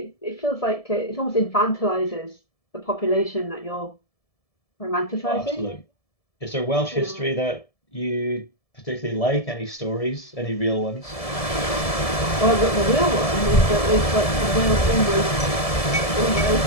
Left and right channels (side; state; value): right; late; 1.7 ms